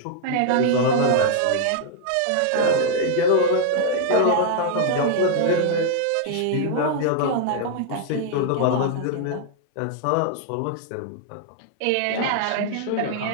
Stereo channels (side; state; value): both; different; correlation -0.01